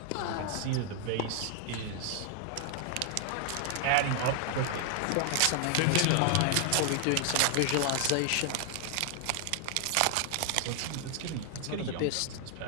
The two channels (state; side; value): different; both; correlation 0.00